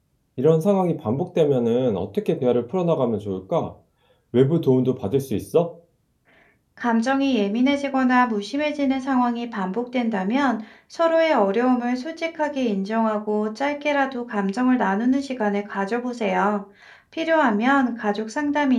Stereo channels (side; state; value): both; identical; correlation 1.00